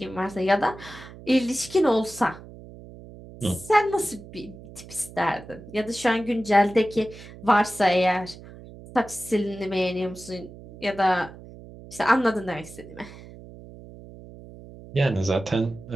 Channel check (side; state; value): right; noise; hum, 17 dB below the sound